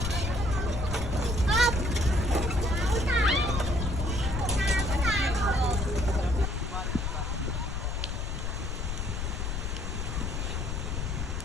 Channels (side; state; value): left; noise; rumble, 2 dB below the sound